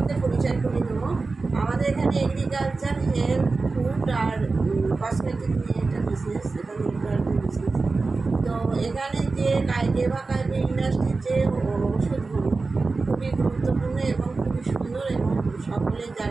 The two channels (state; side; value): quieter; left; 3.9 dB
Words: পরিচয় করে দেবো। আমাদের এখানে এগ্রিকালচার, হেলথ, ফুড আর কসমেটিক নিয়ে একটা বিজনেস, এটা বিজনেস। তো এখানে যে কেভা কাইপোর ইন্ডাস্ট্রির যে ওষুধগুলো খুবই গুরুত্বপূর্ণ এবং খুবই সুন্দর, এবং সকলে